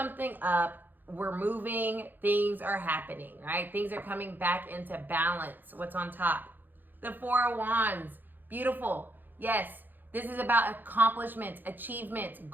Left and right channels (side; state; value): left; late; 0.089 ms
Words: up. We're moving. Things are happening, right? Things are coming back into balance. What's on top? The Four of Wands. Beautiful. Yes, this is about accomplishments, achievements,